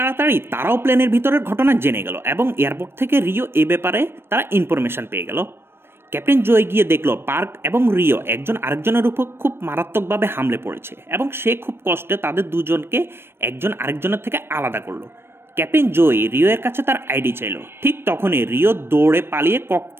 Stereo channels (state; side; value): late; left; 0.12 ms